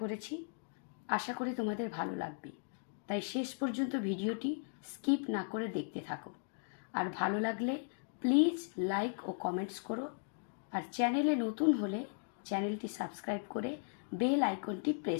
করেছি। আশা করি তোমাদের ভালো লাগবে, তাই শেষ পর্যন্ত ভিডিওটি স্কিপ না করে দেখতে থাকো। আর ভালো লাগলে প্লিজ লাইক ও কমেন্টস করো। আর চ্যানেলে নতুন হলে চ্যানেলটি সাবস্ক্রাইব করে বেল আইকনটি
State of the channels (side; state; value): right; silent; digital silence